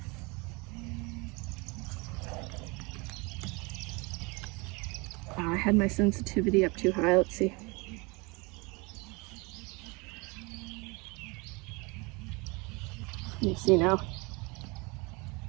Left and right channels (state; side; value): quieter; left; 27.3 dB